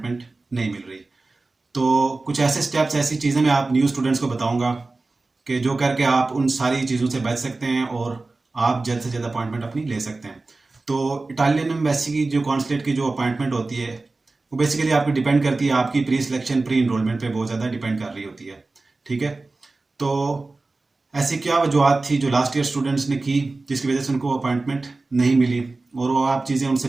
नहीं मिल रही। तो कुछ ऐसे स्टेप्स, ऐसी चीज़ें मैं आप न्यू स्टूडेंट्स को बताऊँगा कि जो करके आप उन सारी चीज़ों से बच सकते हैं और आप जल्द से जल्द अपॉइंटमेंट अपनी ले सकते हैं। तो इटालियन एम्बेसी की जो कॉन्सुलेट की जो अपॉइंटमेंट होती है वो बेसिकली आपकी डिपेंड करती है, आपकी प्री सिलेक्शन प्री इनरोलमेंट पे बहुत ज़्यादा डिपेंड कर रही होती है। ठीक है। तो ऐसी क्या वजूहत थी जो लास्ट ईयर स्टूडेंट्स ने की जिसकी वजह से उनको अपॉइंटमेंट नहीं मिली, और वो आप चीज़ें उनसे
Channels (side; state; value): left; quieter; 3.4 dB